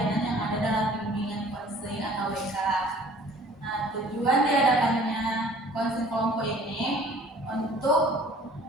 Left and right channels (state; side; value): normal; both; correlation 0.52